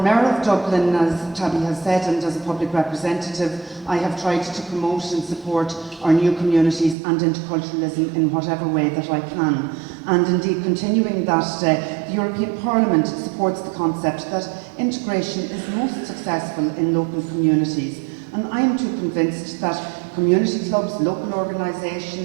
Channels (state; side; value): drops out; left; at 7.0 s